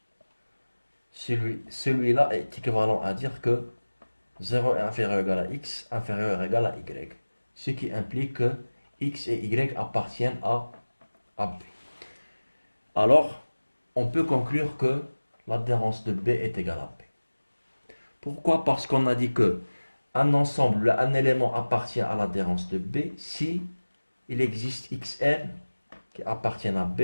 celui-là est équivalent à dire que 0 est inférieur ou égal à x, inférieur ou égal à y, ce qui implique que x et y appartiennent à B. Alors, on peut conclure que l'adhérence de B est égale à B. Pourquoi? Parce qu'on a dit que un élément appartient à l'adhérence de B si il existe xn qui appartiennent à B,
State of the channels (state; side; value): inverted; both; correlation -1.00